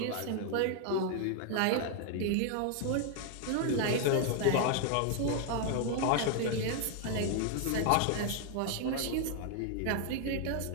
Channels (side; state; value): both; different; correlation 0.00